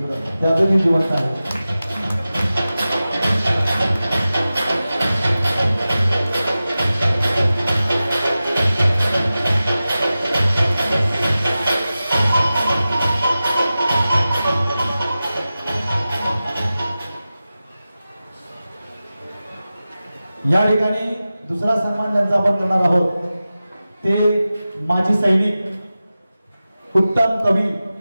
त्या अजूनही जिवंत आहे। या ठिकाणी दुसरा सन्मान ज्यांचा आपण करणार आहोत ते माजी सैनिक, उत्तम कवी,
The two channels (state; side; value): inverted; both; correlation -0.95